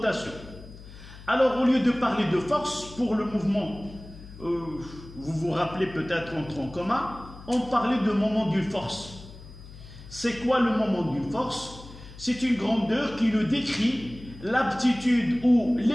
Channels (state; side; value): noise; left; hum, 17 dB below the sound